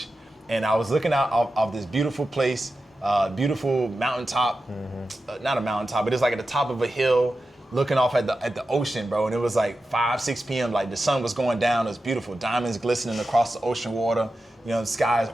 and I was looking out of this beautiful place, beautiful mountaintop. Not a mountaintop, but it's like at the top of a hill. looking off at the ocean, bro, and it was like 5, 6 p.m. Like the sun was going down. It was beautiful. Diamonds glistening across the ocean water. You know, the sky is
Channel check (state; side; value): normal; both; correlation 0.92